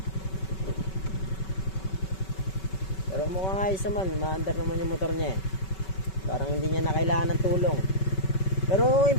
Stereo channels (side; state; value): right; late; 5.3 ms